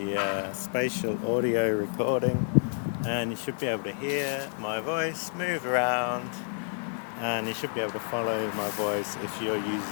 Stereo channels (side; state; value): right; silent; 58 dB below the other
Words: spatial audio recording, and you should be able to hear my voice move around, and you should be able to follow my voice if you're